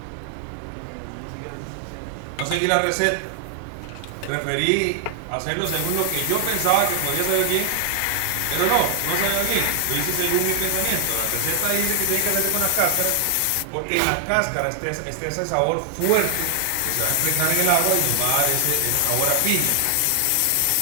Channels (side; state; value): both; different; correlation 0.00